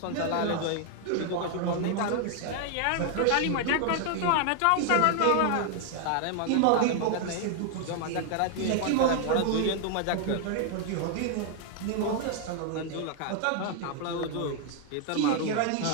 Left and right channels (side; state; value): both; different; correlation 0.00